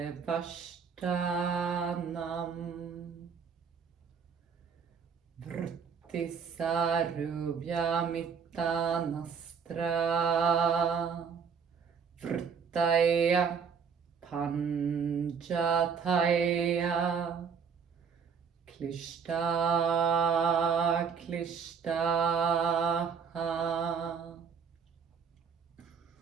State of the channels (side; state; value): left; quieter; 6.4 dB